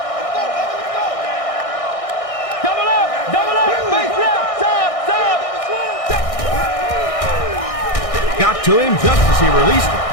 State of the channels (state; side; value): late; right; 1.6 ms